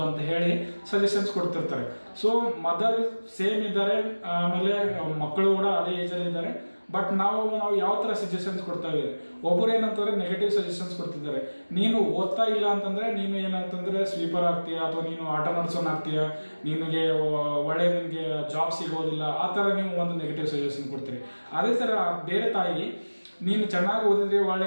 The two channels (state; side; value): inverted; both; correlation -1.00